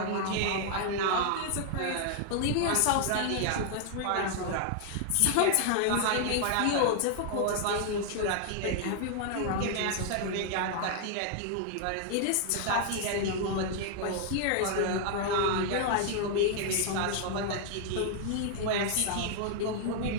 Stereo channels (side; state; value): both; different; correlation 0.00